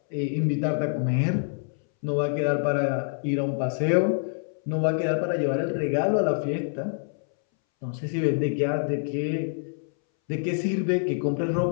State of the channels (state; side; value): silent; right; 61 dB below the other